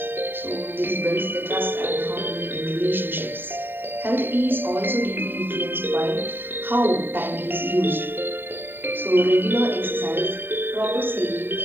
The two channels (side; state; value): left; late; 0.096 ms